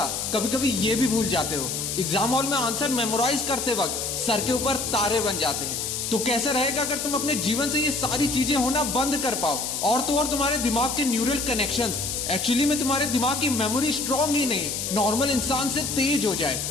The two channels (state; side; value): noise; left; hiss, 3 dB below the sound